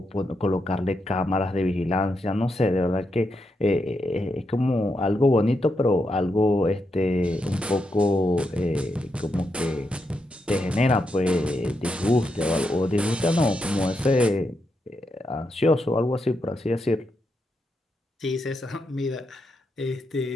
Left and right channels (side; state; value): both; normal; correlation 0.83